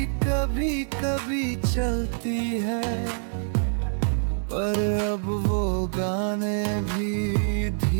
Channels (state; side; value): silent; left; digital silence